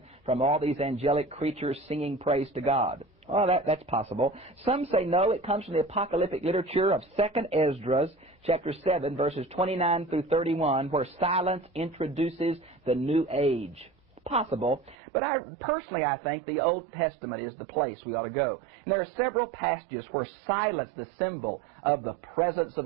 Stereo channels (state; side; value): drops out; left; at 15.0 s